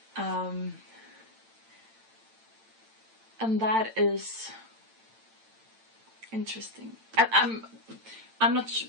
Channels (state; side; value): late; left; 8.9 ms